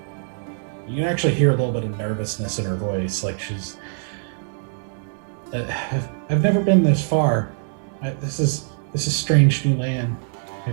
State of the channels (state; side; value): silent; left; 63 dB below the other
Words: You can actually hear a little bit of nervousness in her voice, like she's. I've never been this far. This is strange new land. I